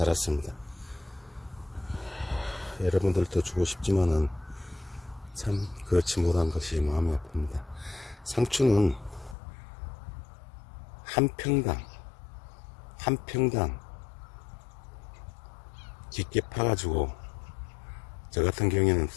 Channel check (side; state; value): right; drops out; at 9.3 s